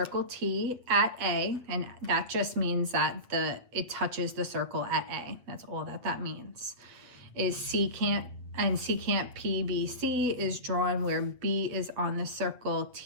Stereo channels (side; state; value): left; late; 7.9 ms